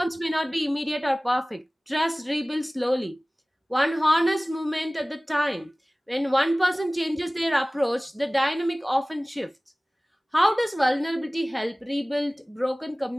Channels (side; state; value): both; normal; correlation 0.98